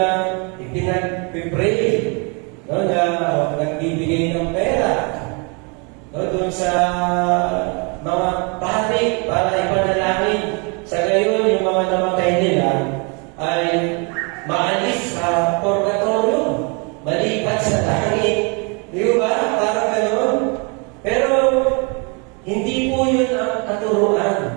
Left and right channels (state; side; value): quieter; left; 33.6 dB